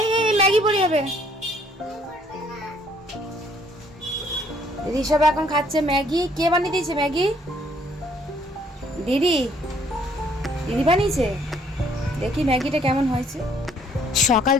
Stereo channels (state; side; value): normal; both; correlation 0.63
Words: এই Maggi পড়ে যাবে। ঋষভ এখন খাচ্ছে ম্যাগি। কে বানিয়ে দিয়েছে ম্যাগি? দিদি দিদি বানিয়েছে। দেখি ম্যাগিটা কেমন হয়েছে। সকাল